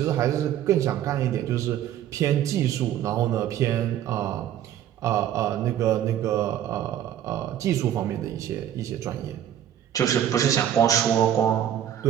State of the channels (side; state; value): left; quieter; 10.9 dB